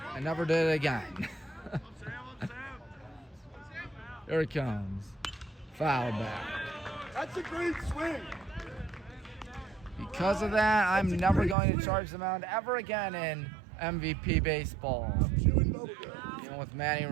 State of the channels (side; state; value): left; drops out; at 11.6 s